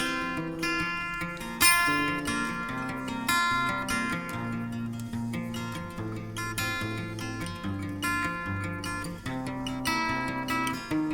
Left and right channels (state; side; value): identical; both; correlation 1.00